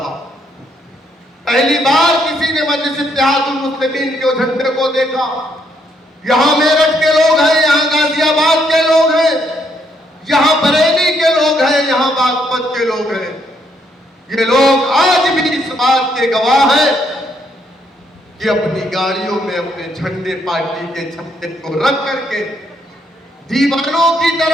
पहली बार किसी ने मजलिस इत्तेहादुल मुस्लिमीन के झंडे को देखा। यहां मेरठ के लोग हैं, यहां गाजियाबाद के लोग हैं, यहां बरेली के लोग हैं, यहां बागपत के लोग हैं। ये लोग आज भी इस बात के गवाह हैं कि अपनी गाड़ियों में अपने झंडे, पार्टी के झंडे को रख करके दीवानों की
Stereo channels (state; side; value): normal; both; correlation 0.73